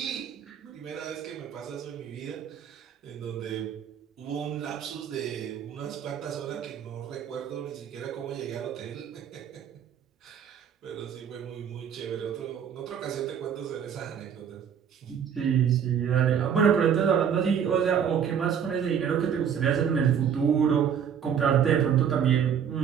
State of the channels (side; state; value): left; quieter; 8.0 dB